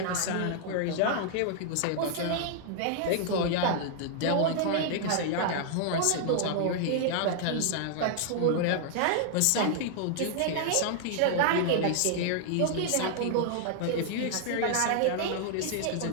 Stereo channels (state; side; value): different; both; correlation -0.01